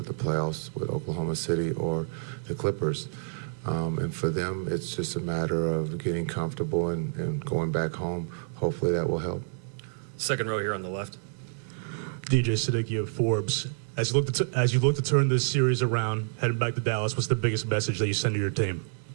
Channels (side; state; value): left; silent; 59 dB below the other